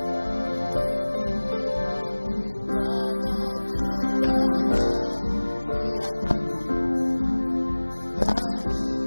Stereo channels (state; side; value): inverted; both; correlation -1.00